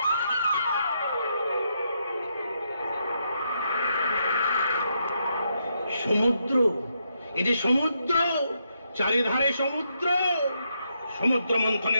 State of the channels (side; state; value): both; inverted; correlation -0.79